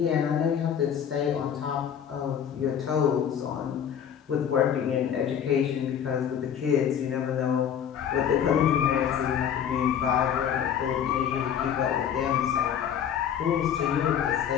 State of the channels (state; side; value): quieter; right; 8.7 dB